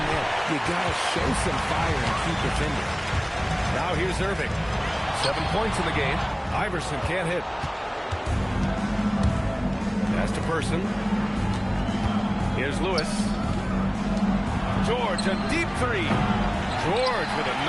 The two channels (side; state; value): both; identical; correlation 1.00